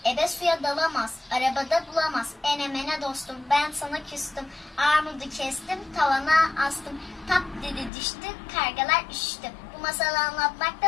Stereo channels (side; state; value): right; drops out; at 7.9 s